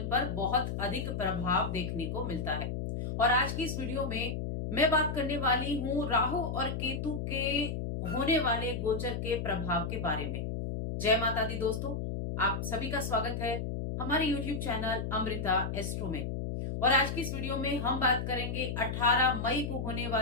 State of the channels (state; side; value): noise; left; hum, 3 dB below the sound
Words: पर बहुत अधिक प्रभाव देखने को मिलता है। और आज की इस वीडियो में मैं बात करने वाली हूं राहु और केतु के होने वाले गोचर के प्रभाव के बारे में। जय माता दी दोस्तों, आप सभी का स्वागत है हमारे YouTube चैनल अमृता एस्ट्रो में। और आज की इस वीडियो में हम बात करेंगे 18 मई को होने